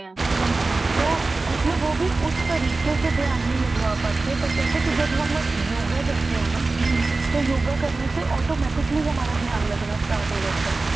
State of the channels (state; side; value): quieter; left; 3.5 dB